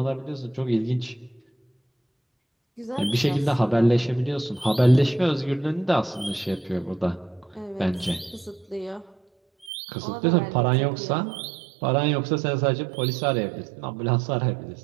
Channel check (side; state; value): left; drops out; at 9.7 s